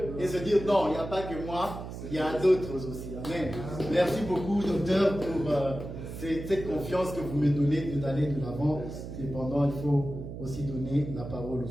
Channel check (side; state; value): right; noise; hum, 9 dB below the sound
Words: et se dire non, il n'y a pas que moi, il y a d'autres aussi. Amen. Merci beaucoup, docteur, pour cette confiance que vous me donnez d'aller de l'avant. Cependant, il faut aussi donner la parole